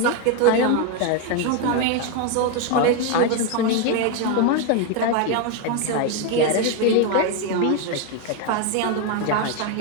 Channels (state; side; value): different; both; correlation 0.01